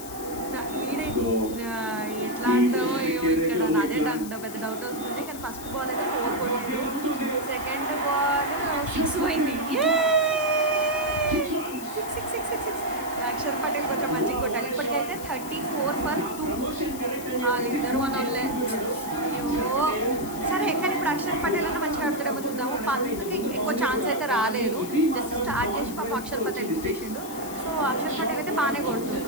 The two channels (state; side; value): noise; left; hiss, 13 dB below the sound